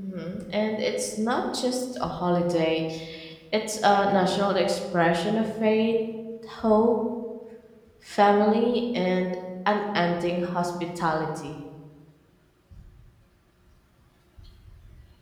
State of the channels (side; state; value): both; identical; correlation 1.00